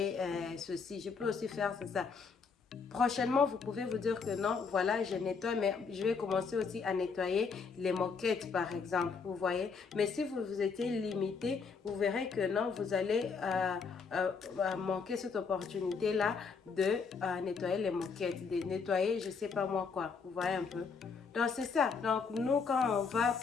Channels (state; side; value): quieter; right; 5.3 dB